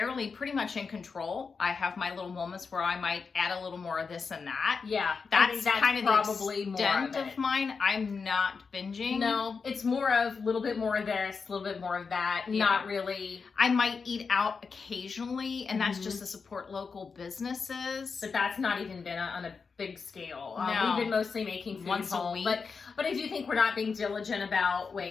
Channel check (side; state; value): right; quieter; 5.1 dB